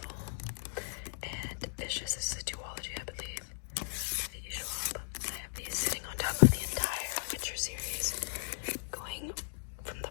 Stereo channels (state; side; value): silent; right; digital silence